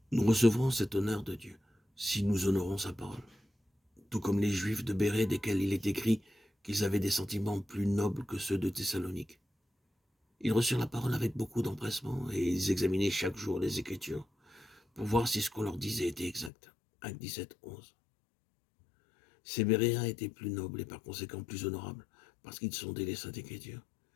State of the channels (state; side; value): drops out; right; at 16.5 s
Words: Nous recevrons cet honneur de Dieu si nous honorons sa parole. Tout comme les Juifs de Bérée, desquels il est écrit qu'ils avaient des sentiments plus nobles que ceux de Thessalonique. Ils reçurent la parole avec beaucoup d'empressement et ils examinaient chaque jour les Écritures pour voir si ce qu'on leur disait était exact. Acte 17, 11. Ces Béréens étaient plus nobles et par conséquent plus honorables parce qu'ils sondaient les Saintes Écritures